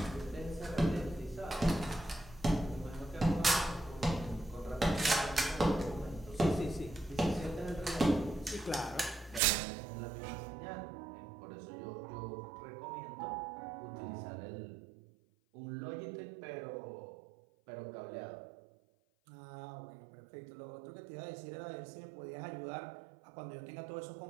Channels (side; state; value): left; drops out; at 9.4 s